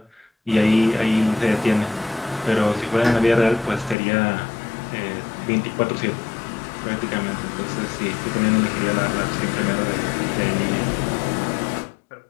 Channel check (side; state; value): right; drops out; at 4.0 s